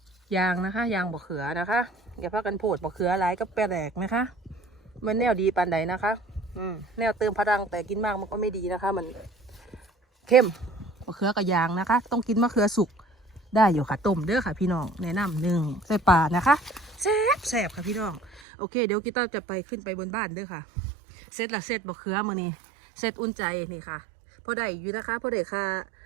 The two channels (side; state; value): left; drops out; at 18.4 s